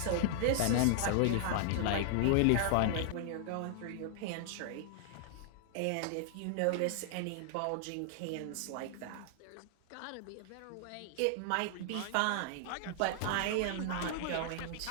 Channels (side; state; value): both; different; correlation -0.01